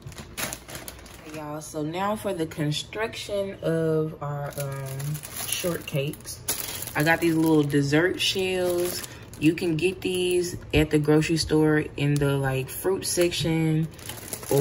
Okay, y'all, so now for the construction of our shortcakes. I got these little dessert shells. You can get these at the grocery store in the like fruit section,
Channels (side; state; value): both; identical; correlation 1.00